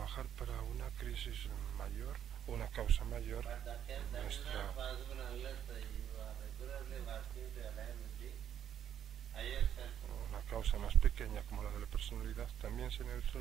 para una crisis mayor, una causa mayor, But that is nuestra not possible unless you are regularly working to align with the higher self. una causa más pequeña como la de la personalidad también se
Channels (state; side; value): quieter; left; 9.6 dB